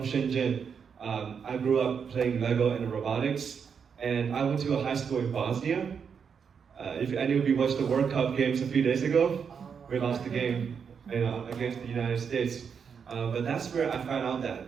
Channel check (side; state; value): left; quieter; 6.6 dB